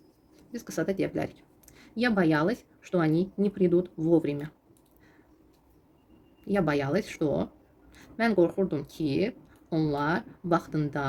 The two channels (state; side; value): identical; both; correlation 1.00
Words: Biz qısa da deyə bilərik. Я боялась, что они не придут вовремя. Я боялась, что... Mən qorxurdum ki, onlar